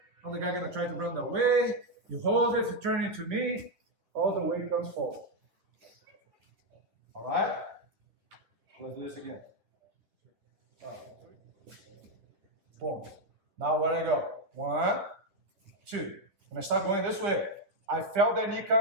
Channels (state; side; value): late; left; 10 ms